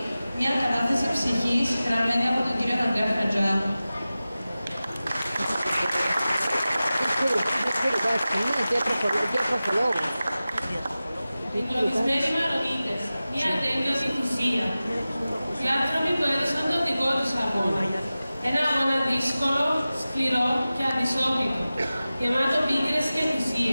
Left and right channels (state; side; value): inverted; both; correlation -0.96